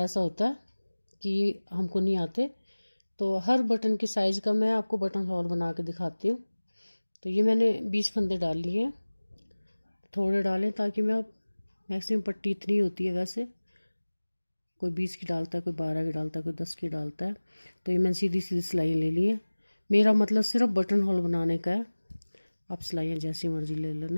होता है कि हमको नहीं आते, तो हर बटन की साइज़ का मैं आपको बटन होल बना के दिखाती हूँ। तो ये मैंने 20 फंदे डाल लिए हैं, थोड़े डालें ताकि मैं मैक्सिमम पट्टी इतनी होती है, वैसे कोई 20 की डालता है, कोई 12 की डालता है, कोई 10 की डालता है। तो ये मैंने सीधी सीधी सिलाइयाँ ले ली है। मेरा मतलब सिर्फ बटन होल बनाने का है, आप सिलाइयाँ जैसी मर्जी ले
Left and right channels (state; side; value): inverted; both; correlation -1.00